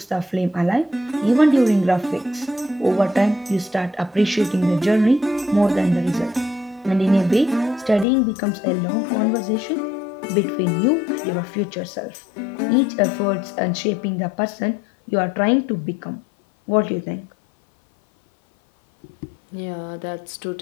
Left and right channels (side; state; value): right; drops out; at 8.1 s